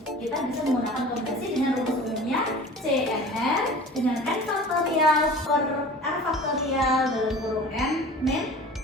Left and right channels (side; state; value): both; normal; correlation 0.41